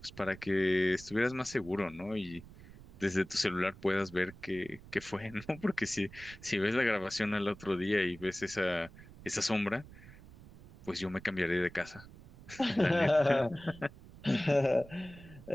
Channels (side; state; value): right; noise; rumble, 19 dB below the sound